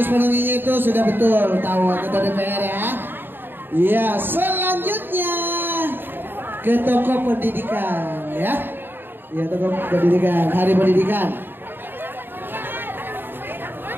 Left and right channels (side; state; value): left; late; 0.097 ms